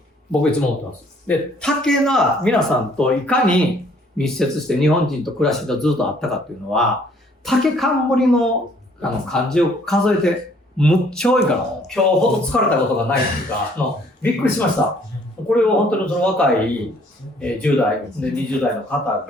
僕いつも思ってます。で、竹が皆さんといかに密接して日本人と暮らしてずっとあったかっていうのは、竹冠の漢字を数えて、むっちゃ多いから、今日ほど疲れたことがないっていうか、びっくりしました。これを本当にその若い10代、で20代の方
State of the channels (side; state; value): both; normal; correlation 0.61